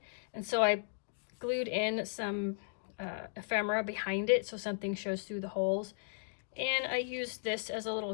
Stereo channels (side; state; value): right; silent; digital silence